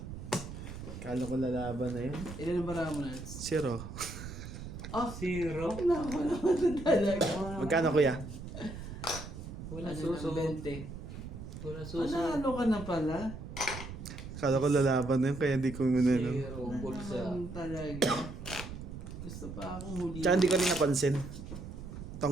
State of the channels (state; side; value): noise; right; rumble, 10 dB below the sound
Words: Kala ko lalaban na yun. Ilan ang marami mo na? 0. Oh, Zero. naku naman talaga. Magkano kuya? Wala Ano suso. ng 20? Wala suso. Ano ka na pala? Kala ko lalaban na yun kaya di ko muna no. Zero. Bulsa. Naman talaga. Gusto pa akong huli. Tsaka hindi ko rin napansin.